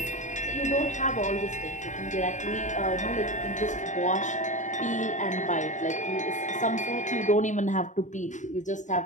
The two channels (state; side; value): late; right; 0.36 ms